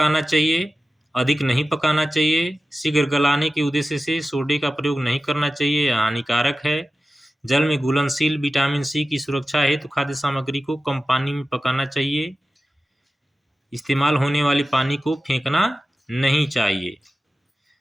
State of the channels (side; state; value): both; normal; correlation 0.94